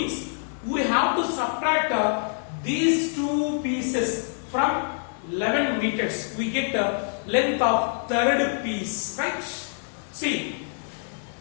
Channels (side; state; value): right; silent; 61 dB below the other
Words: we have to subtract these two pieces from 11 meters. We get the length of third piece. Right? See.